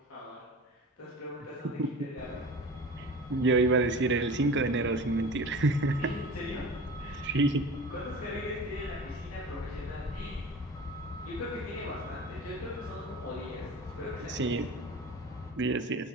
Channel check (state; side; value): normal; both; correlation 0.36